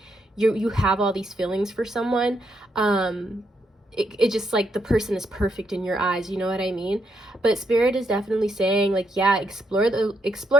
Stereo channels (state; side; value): normal; both; correlation 0.78